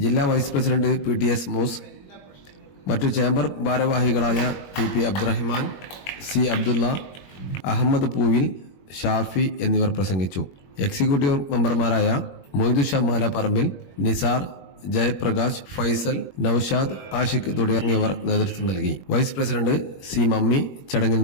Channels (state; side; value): late; right; 21 ms